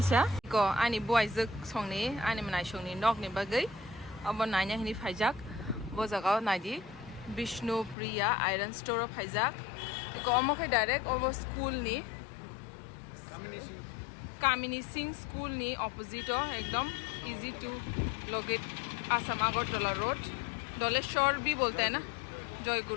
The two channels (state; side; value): drops out; right; at 8.0 s